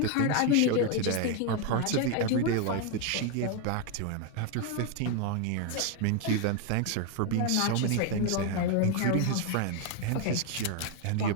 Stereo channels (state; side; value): different; both; correlation 0.01